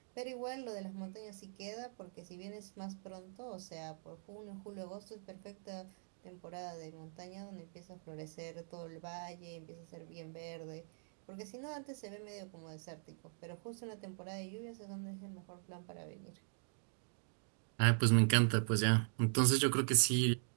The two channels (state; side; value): silent; left; digital silence